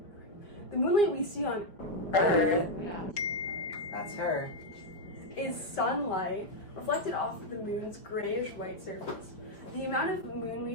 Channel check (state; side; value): late; right; 5.0 ms